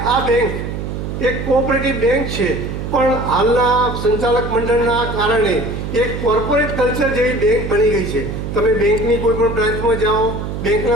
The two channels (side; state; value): right; noise; hum, 5 dB below the sound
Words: આ બેંક એક કોઓપરેટિવ બેંક છે, પણ હાલના સંચાલક મંડળના કારણે એક કોર્પોરેટ કલ્ચર જેવી બેંક બની ગઈ છે. તમે બેંકની કોઈ પણ બ્રાન્ચમાં જાઓ,